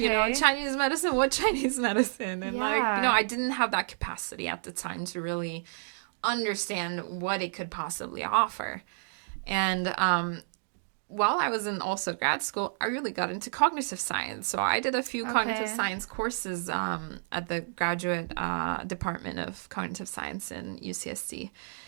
Chinese medicine. What Chinese medicine? And I didn't have that capacity at the time to really understand what it could possibly offer. And while I was in also grad school, I really got into cognitive science. So I did a few cognitive science courses at the graduate department of cognitive science in UCSD.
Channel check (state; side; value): silent; left; digital silence